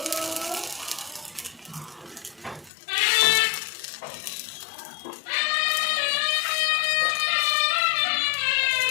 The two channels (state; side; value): drops out; right; at 2.7 s